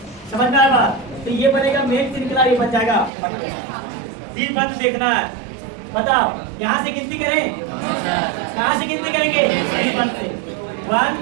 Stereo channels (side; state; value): left; drops out; at 3.1 s